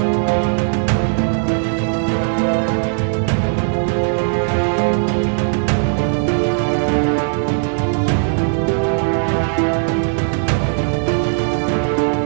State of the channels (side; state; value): left; silent; 68 dB below the other